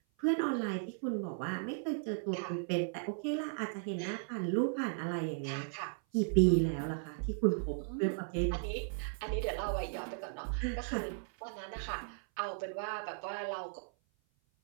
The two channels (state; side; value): silent; left; 54 dB below the other